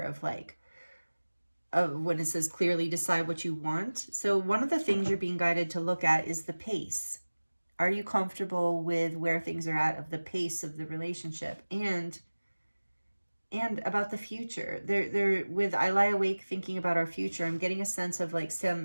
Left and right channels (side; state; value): both; inverted; correlation -1.00